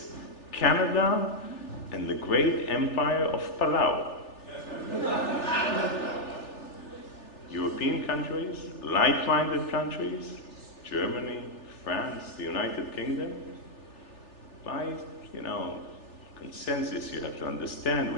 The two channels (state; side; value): late; right; 3.4 ms